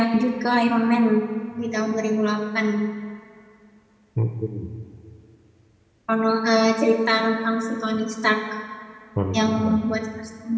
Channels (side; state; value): both; identical; correlation 1.00